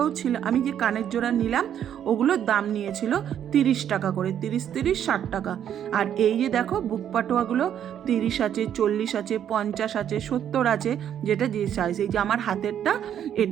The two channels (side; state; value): left; quieter; 9.7 dB